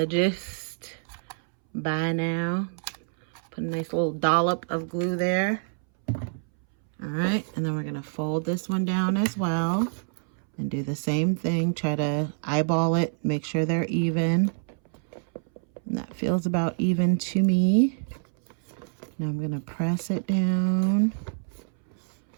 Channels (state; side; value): silent; left; 60 dB below the other